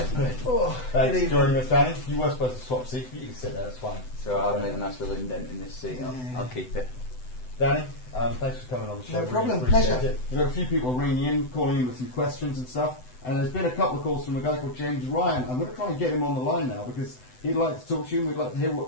Thanks for joining us, Danny. You were supposed to swap seats, but you can sit there, that's fine. So I've made a nice little indent in this seat. I'll keep it. Danny, thanks for coming on the show. No problem, Really appreciate pleasure. it. We've got a few people ringing in, calling in with some questions and stuff, and there's been a couple of calls from a guy called James Ryan. I'm going to try and get him on the line now because he'd like to talk to you and we'd like to hear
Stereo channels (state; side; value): late; right; 7.9 ms